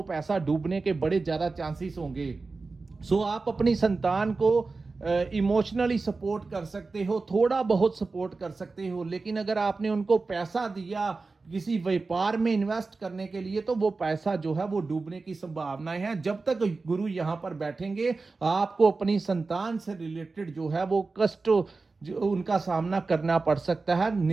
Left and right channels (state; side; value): quieter; left; 3.9 dB